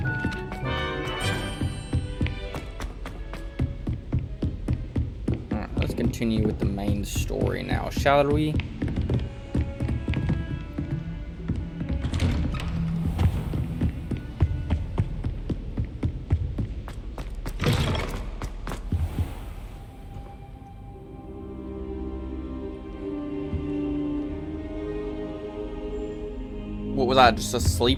Alright, let's continue with the main story now, shall we? What was I, just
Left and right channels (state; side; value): identical; both; correlation 1.00